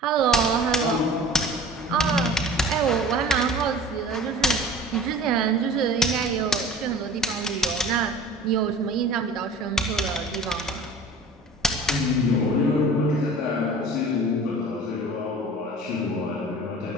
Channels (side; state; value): both; normal; correlation 0.42